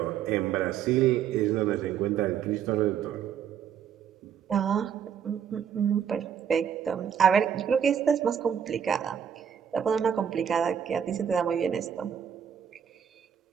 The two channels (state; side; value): quieter; left; 8.3 dB